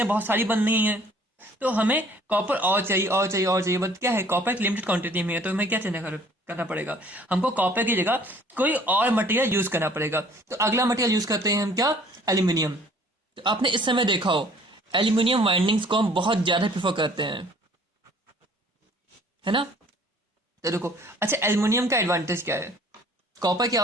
बहुत सारी बन रही हैं, तो हमें कॉपर और चाहिए और चाहिए और चाहिए, बट क्या है कॉपर एक लिमिटेड क्वांटिटी में है, तो हमें क्या करना पड़ेगा, हमको कॉपर की जगह कोई और मटेरियल यूज करना पड़ेगा। तो अगला मटेरियल यूज करते हैं हम क्या, एल्यूमिनियम। तो आपने इस समय देखा हो एल्यूमिनियम वाइंडिंग्स को हम बहुत ज्यादा प्रेफर करते हैं, है ना। तो देखो अच्छा एल्यूमिनियम का एडवांटेज क्या है, कॉपर क्या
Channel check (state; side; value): normal; both; correlation 0.55